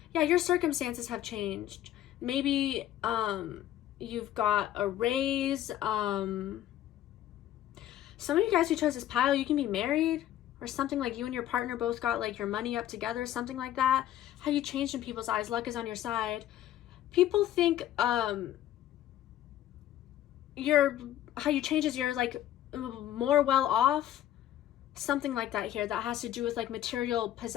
Yeah, your circumstances have changed. Maybe you've got a raise. Some of you guys who chose this pile, you can be married or something, like you and your partner both got like your money up together, something like that. How you changed in people's eyes. Luck is on your side. People think how you change is you're like more well off, something like that here. That has to do with like material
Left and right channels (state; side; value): quieter; right; 12.4 dB